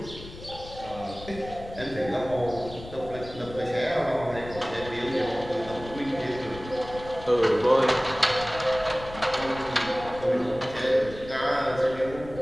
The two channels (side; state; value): left; noise; rumble, 14 dB below the sound